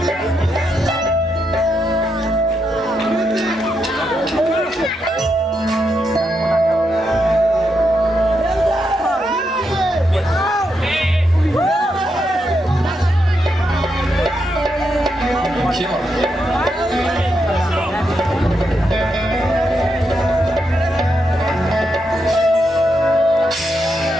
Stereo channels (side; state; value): both; normal; correlation 0.82